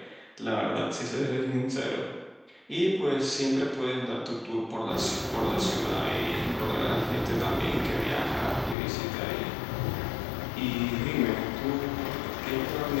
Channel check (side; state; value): right; drops out; at 8.8 s